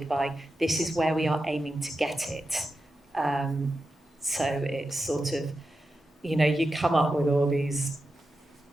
by, this is where we are aiming to get it. So it's sort of, you come up with all these,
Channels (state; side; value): normal; both; correlation 0.90